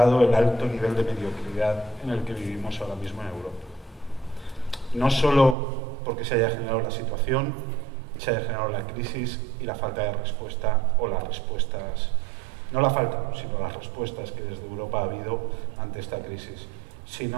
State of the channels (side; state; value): left; drops out; at 5.6 s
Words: el alto nivel de mediocridad en el que vivimos ahora mismo en Europa. No solo porque se haya generado la situación, se haya generado la crisis y la falta de respuesta, o las respuestas, no la falta, sino las respuestas que desde Europa ha habido ante esta crisis,